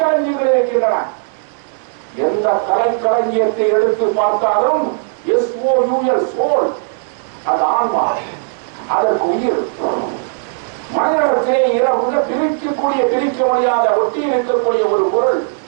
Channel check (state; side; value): silent; left; 69 dB below the other